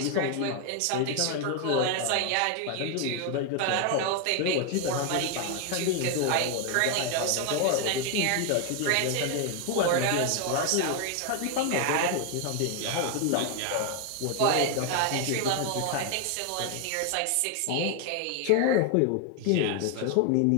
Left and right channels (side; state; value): both; different; correlation 0.01